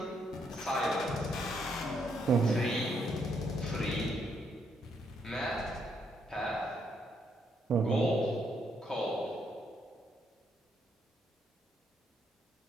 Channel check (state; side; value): normal; both; correlation 0.75